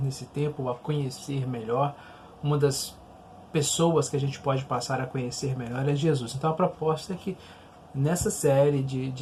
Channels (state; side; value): identical; both; correlation 1.00